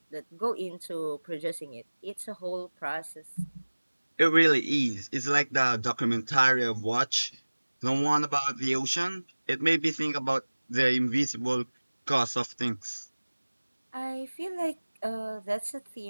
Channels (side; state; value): both; inverted; correlation -1.00